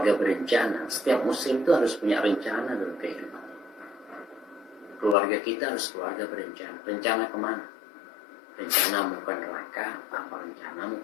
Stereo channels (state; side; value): drops out; right; at 5.2 s